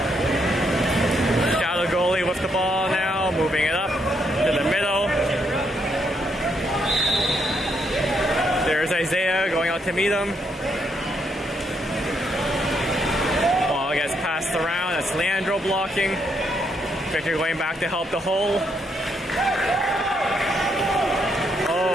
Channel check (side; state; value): both; normal; correlation 0.76